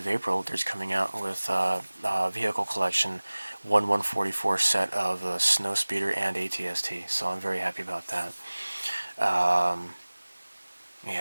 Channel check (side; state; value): both; inverted; correlation -1.00